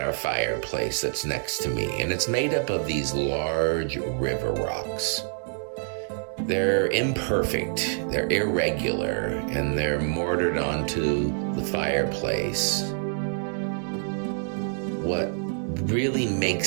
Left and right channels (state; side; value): silent; left; 61 dB below the other